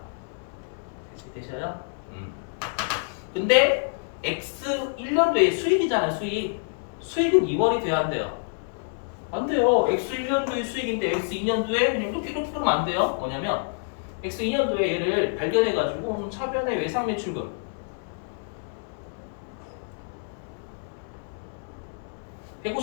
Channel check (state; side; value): silent; right; digital silence